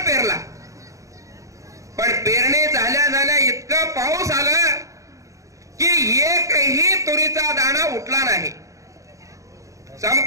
पण पेरणी झाल्या झाल्या इतका पाऊस आला की एकही तुरीचा दाणा उठला नाही.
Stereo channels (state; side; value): late; left; 0.16 ms